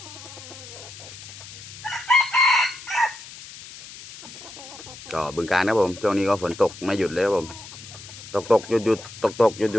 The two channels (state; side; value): noise; left; hiss, 15 dB below the sound